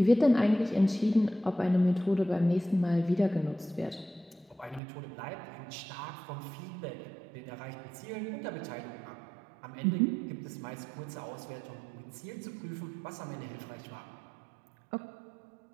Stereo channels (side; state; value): left; drops out; at 4.8 s